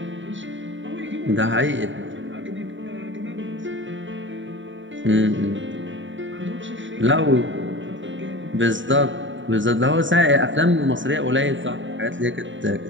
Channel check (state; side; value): late; left; 0.55 ms